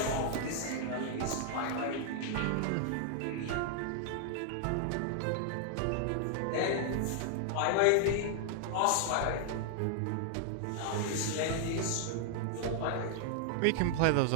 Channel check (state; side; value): different; both; correlation 0.00